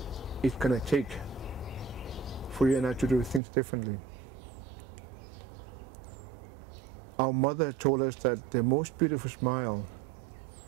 it's going to take for you and I to do things differently. Our mother told us that the most beautiful smile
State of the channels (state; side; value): drops out; left; at 3.4 s